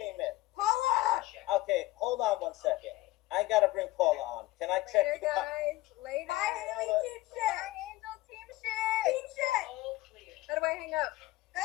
in. Paula! Okay, hold on one second. I gotta bring Paula on. Can I check Later, you out? guys. Later. Bye, Haley. Team shit. Bye, Angel. Team shit. Team shit. How do I hang up?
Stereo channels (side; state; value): right; quieter; 18.2 dB